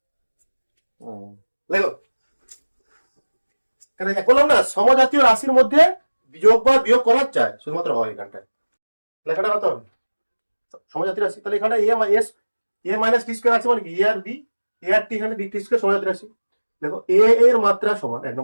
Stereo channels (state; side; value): inverted; both; correlation -1.00